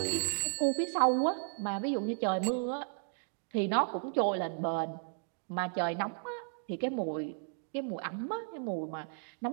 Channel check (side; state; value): left; silent; digital silence